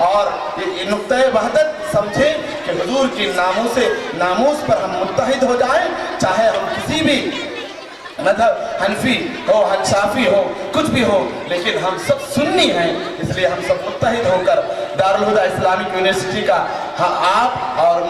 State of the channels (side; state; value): both; identical; correlation 1.00